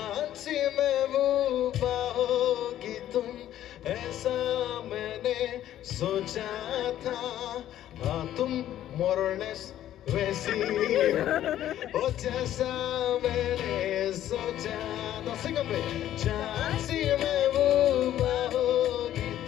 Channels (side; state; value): right; quieter; 12.2 dB